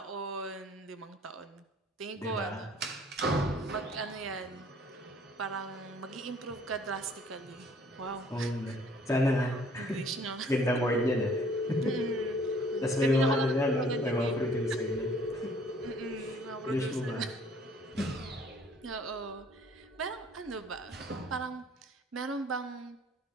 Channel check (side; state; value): both; normal; correlation 0.57